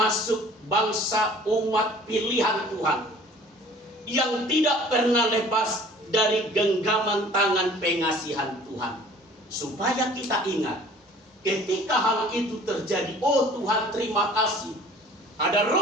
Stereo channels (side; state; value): both; normal; correlation 0.50